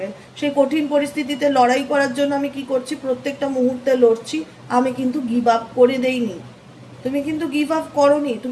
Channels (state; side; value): identical; both; correlation 1.00